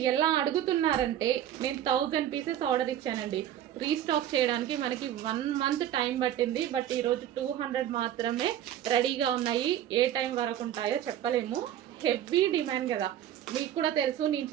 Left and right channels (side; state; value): left; quieter; 11.1 dB